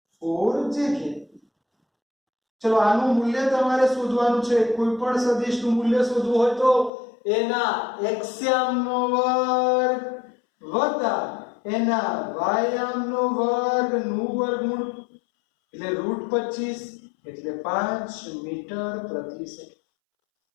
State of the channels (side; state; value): right; drops out; at 6.9 s